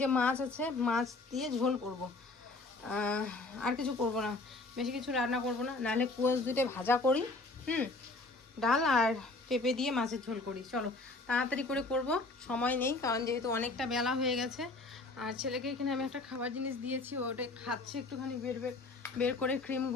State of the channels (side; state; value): right; quieter; 3.2 dB